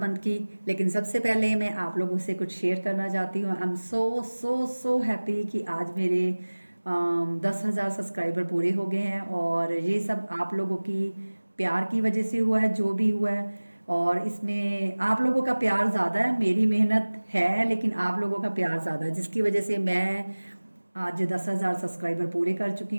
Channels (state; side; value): inverted; both; correlation -1.00